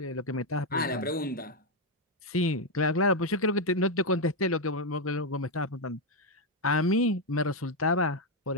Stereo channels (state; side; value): normal; both; correlation 0.03